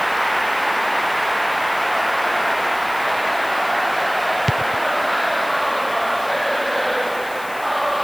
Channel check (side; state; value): left; noise; hiss, 18 dB below the sound